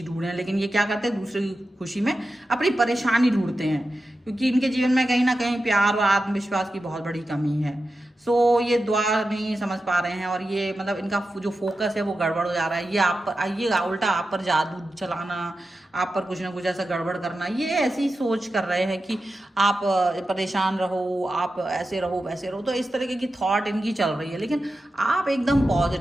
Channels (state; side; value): normal; both; correlation 0.92